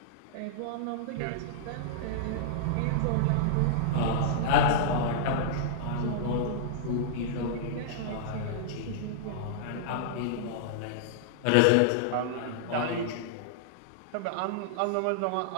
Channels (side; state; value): both; different; correlation -0.02